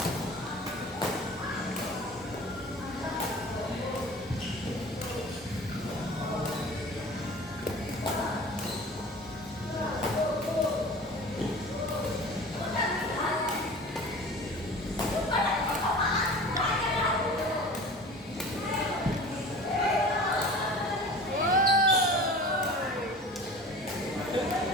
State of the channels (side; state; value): both; normal; correlation 0.39